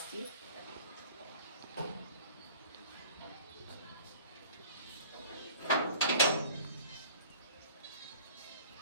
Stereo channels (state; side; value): inverted; both; correlation -0.47